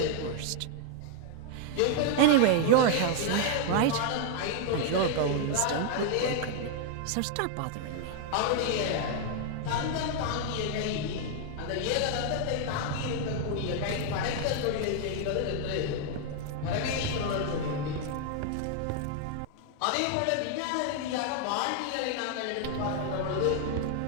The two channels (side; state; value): both; different; correlation 0.00